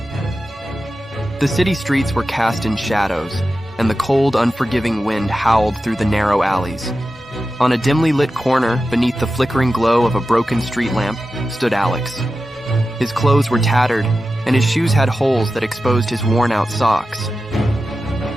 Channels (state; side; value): normal; both; correlation 0.93